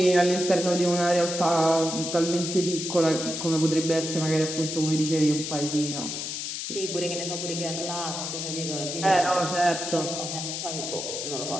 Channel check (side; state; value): left; noise; hiss, 5 dB below the sound